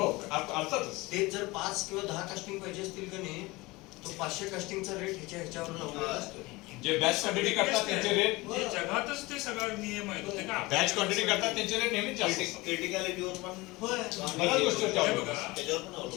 अर्थातच. ते जर 5 किंवा 10 कास्टिंग पाहिजे असतील का नाही, तो 500 कास्टिंगचा रेट ह्याच्यावर लावलेला असतो. जे बॅच क्वांटिटी करतात त्यांचे रेट, जे जगातच ते सगळं नियम आहेत ते का बॅच क्वांटिटी करतात त्यांचे रेट नेहमीच जास्त असतात. क्रिटिकॅलिटीवर पण होय. बऱ्याच गोष्टी हे त्यावर बघा, त्याच्यावर पण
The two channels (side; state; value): right; quieter; 22.1 dB